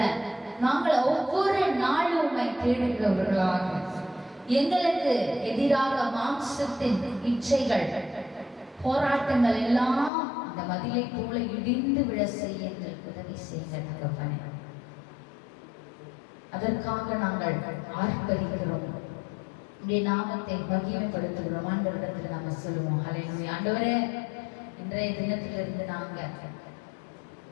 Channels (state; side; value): drops out; right; at 10.1 s